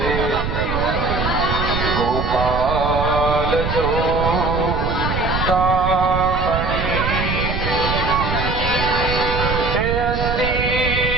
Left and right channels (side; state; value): right; noise; rumble, 3 dB below the sound